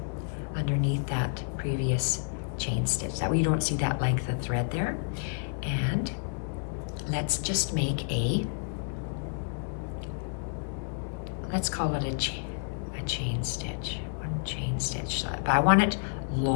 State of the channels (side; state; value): right; silent; 58 dB below the other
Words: underneath that previous chain stitch. That way you don't see that length of thread there. And let's just make let's call it a chain stitch. 1 chain stitch, but I want it